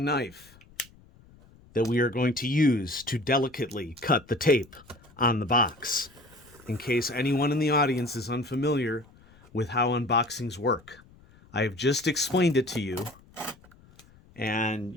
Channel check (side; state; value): left; noise; rumble, 26 dB below the sound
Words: that we are going to use to delicately cut the tape on the box. In case anyone in the audience is unfamiliar with how unboxings work, I have just explained it to you, and